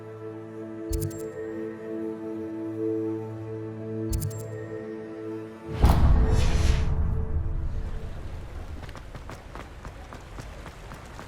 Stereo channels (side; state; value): both; identical; correlation 1.00